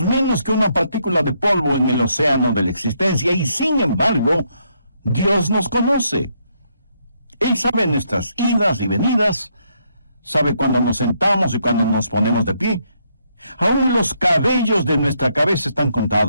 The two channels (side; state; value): both; inverted; correlation -0.75